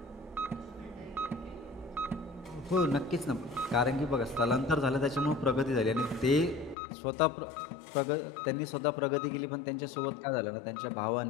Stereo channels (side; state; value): right; drops out; at 6.8 s